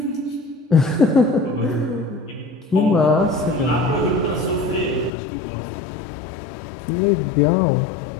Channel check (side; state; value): right; drops out; at 5.1 s